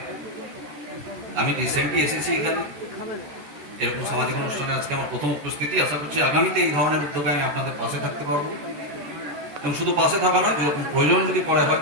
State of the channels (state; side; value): late; left; 14 ms